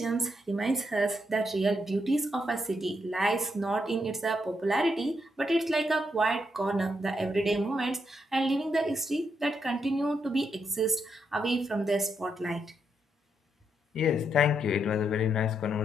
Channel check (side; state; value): both; normal; correlation 0.79